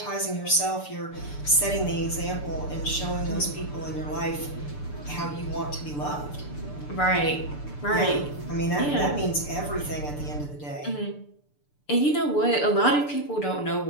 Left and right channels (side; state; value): right; late; 6.8 ms